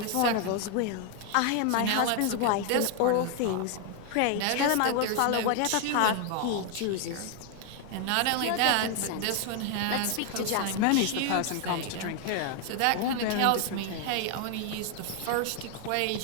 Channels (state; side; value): different; both; correlation 0.00